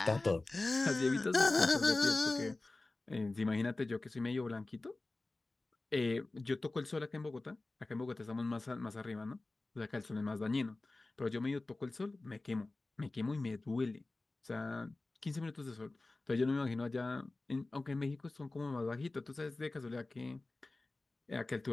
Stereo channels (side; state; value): right; quieter; 3.1 dB